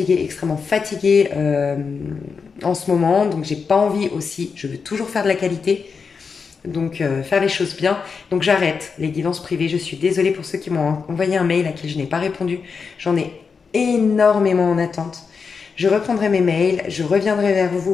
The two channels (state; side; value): quieter; right; 5.4 dB